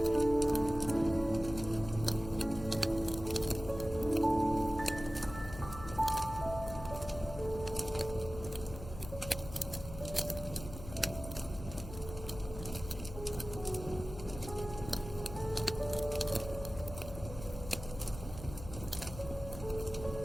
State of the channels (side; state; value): left; noise; hum, 11 dB below the sound